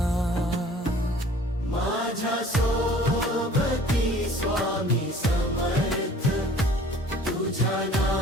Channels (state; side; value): normal; both; correlation 0.50